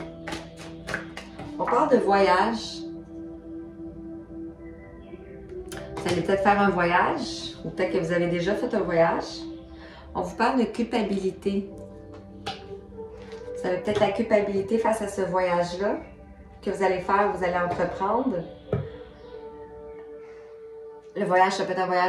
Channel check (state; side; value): identical; both; correlation 1.00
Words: On parle de voyage. Vous allez peut-être faire un voyage, ou peut-être que vous avez déjà fait un voyage. On vous parle de culpabilité. Vous avez peut-être la culpabilité face à ce voyage-là que vous allez faire, vous allez entreprendre. Le voyage, ça peut être un